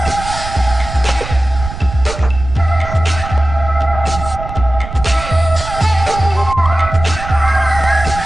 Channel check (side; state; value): right; noise; rumble, 9 dB below the sound